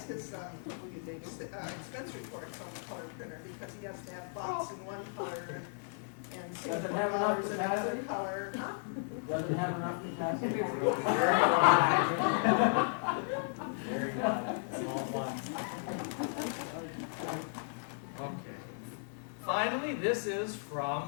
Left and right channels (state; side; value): silent; right; 54 dB below the other